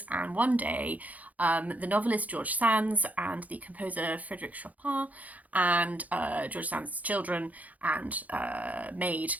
and one day the novelist George Sand and the composer Frédéric Chopin and George Sand's children and maid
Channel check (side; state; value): left; late; 0.076 ms